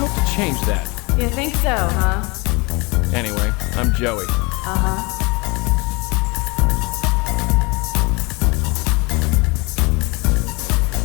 to change that. You think so, huh? Anyway, I'm Joey. Uh-huh.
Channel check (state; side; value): quieter; right; 27.3 dB